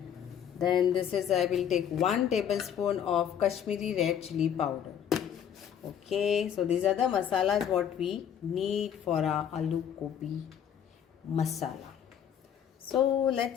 Then this is, I will take 1 tablespoon of Kashmiri red chili powder. Okay, so these are the masalas what we need for our aloo gobi masala. So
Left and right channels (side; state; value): right; quieter; 8.9 dB